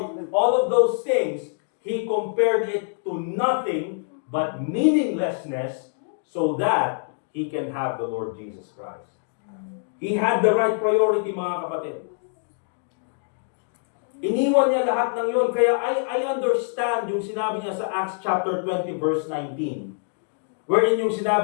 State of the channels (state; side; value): silent; right; digital silence